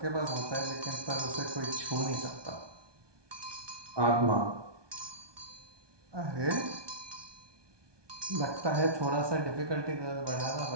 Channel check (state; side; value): late; left; 1.2 ms